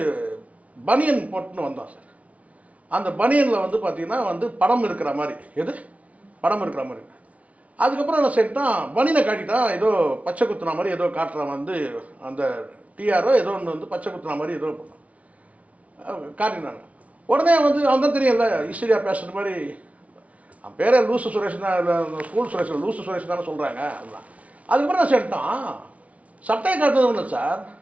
பனியன் போட்டுன்னு வந்தான் சார். அந்த பனியனில் வந்து பார்த்தீங்கன்னா வந்து படம் இருக்கிற மாதிரி, எது படம் இருக்கிற மாதிரி. அதுக்கப்புறம் என்ன செய்யிட்டான், பனியனை காட்டிட்டான், ஏதோ பச்சை குத்துன மாதிரி ஏதோ காட்டுறான் வந்து அந்த டிஆரோ ஏதோ ஒன்று வந்து பச்சை குத்துன மாதிரி ஏதோ பண்ணான் காட்டினாங்க. உடனே வந்து அவன் தான் தெரியல ஈஸ்வரியா பேசுகிற மாதிரி. அவன் பேரே லூசு சுரேஷ் தான், ஸ்கூல் சுரேஷ் லூசு சுரேஷ் தானே சொல்கிறாங்க. அதுதான். அதுக்கப்புறம் என்ன செய்யிட்டான், சட்டையை காட்டுறது இல்லை சார்,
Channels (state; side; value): late; left; 0.067 ms